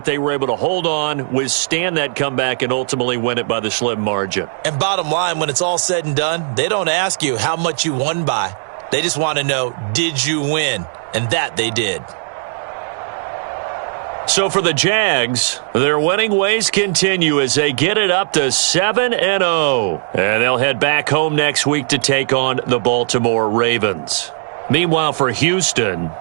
They were able to hold on, withstand that comeback, and ultimately win it by the slim margin. And bottom line, when it's all said and done, they don't ask you how much you won by. They just want to know, did you win? And that they did. So for the Jags, their winning ways continue as they get it up to 7-0. And they'll head back home next week to take on the Baltimore Ravens. Meanwhile, for Houston,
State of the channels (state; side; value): silent; left; digital silence